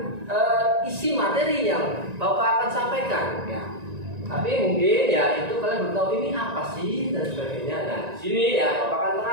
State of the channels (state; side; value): late; left; 1.9 ms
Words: isi materi yang Bapak akan sampaikan ya. Tapi mungkin ya itu kalian belum tahu ini apa sih dan sebagainya. Nah, di sini ya Bapak akan